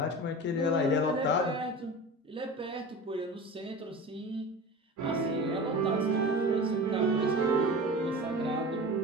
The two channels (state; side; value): normal; both; correlation 0.33